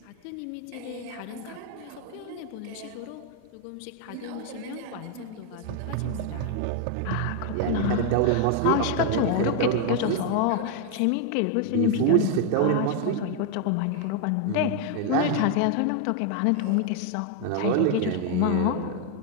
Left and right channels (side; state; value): both; different; correlation 0.00